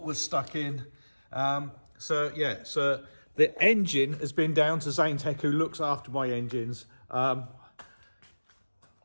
was stuck in. So the engine has been down to Zane Tech, who looks after my engines. I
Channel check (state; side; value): inverted; both; correlation -1.00